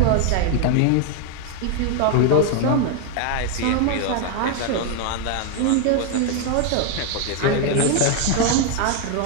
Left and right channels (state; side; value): different; both; correlation 0.01